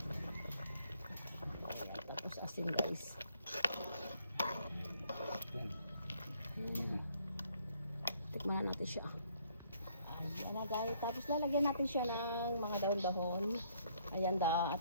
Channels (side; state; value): both; inverted; correlation -0.66